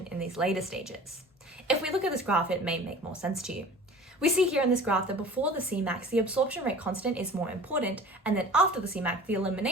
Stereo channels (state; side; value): normal; both; correlation 0.42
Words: in these later stages. If we look at this graph, it may make more sense to you. We see here in this graph that before the Cmax, the absorption rate constant is more important, and then after the Cmax, the